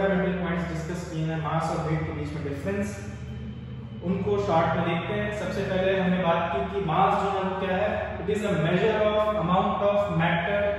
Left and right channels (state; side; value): identical; both; correlation 1.00